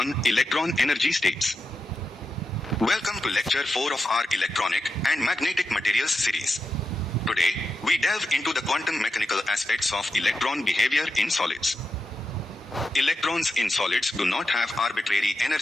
Electron energy states. Welcome to lecture 4 of our electronic and magnetic materials series. Today, we delve into the quantum mechanical aspects of electron behavior in solids. Electrons in solids do not have arbitrary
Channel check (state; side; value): normal; both; correlation 0.88